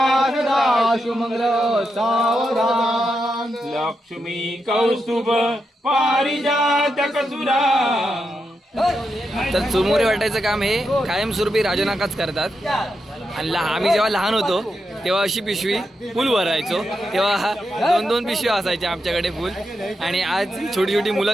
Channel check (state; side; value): normal; both; correlation 0.85